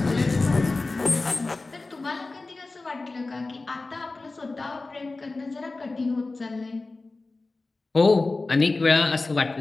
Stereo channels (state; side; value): quieter; right; 3.4 dB